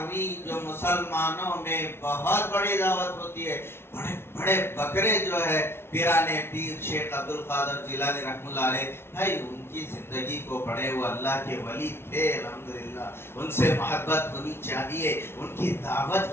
جو مسلمانوں میں بہت بڑی دعوت ہوتی ہے، بڑے بڑے بکرے جو ہے پیرانے پیر شیخ عبد القادر جیلانی رحمۃ اللہ علیہ، بھائی ان کی زندگی کو پڑھے، وہ اللہ کے ولی تھے الحمدللہ، ان سے محبت ہونی چاہیے. ان کی دعوت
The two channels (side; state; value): right; late; 0.12 ms